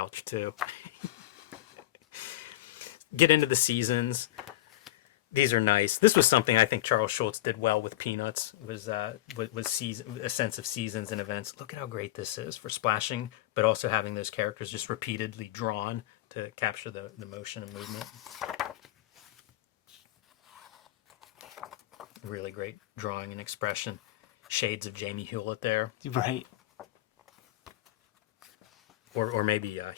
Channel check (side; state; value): right; quieter; 15.5 dB